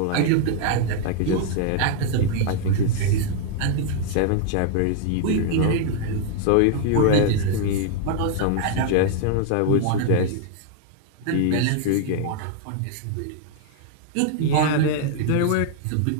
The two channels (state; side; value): different; both; correlation 0.00